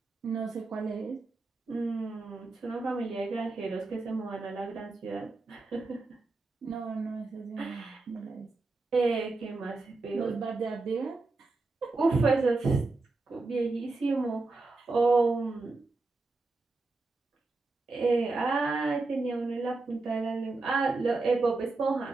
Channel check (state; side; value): quieter; left; 3.5 dB